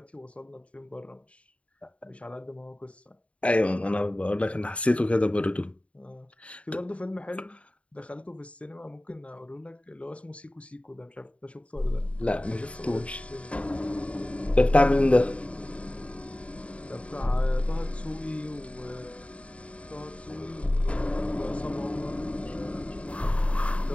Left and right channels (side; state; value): right; late; 0.063 ms